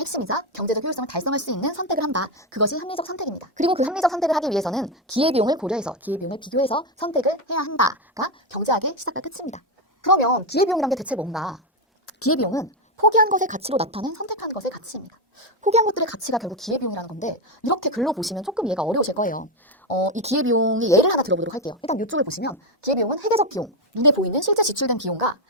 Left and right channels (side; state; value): both; normal; correlation 0.08